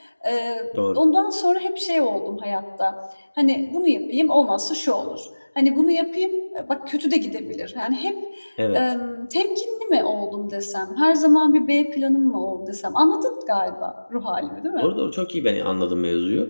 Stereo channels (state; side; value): inverted; both; correlation -1.00